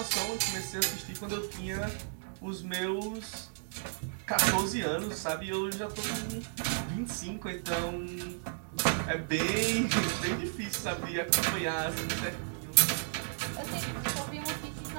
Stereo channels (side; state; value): left; silent; digital silence